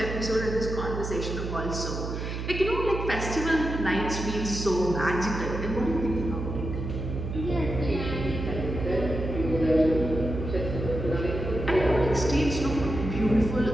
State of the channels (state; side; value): noise; right; hum, 5 dB below the sound